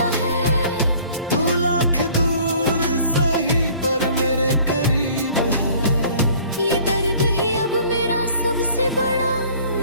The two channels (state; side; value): inverted; both; correlation -0.52